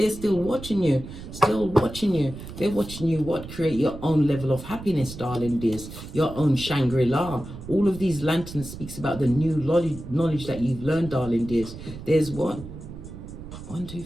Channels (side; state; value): right; noise; rumble, 12 dB below the sound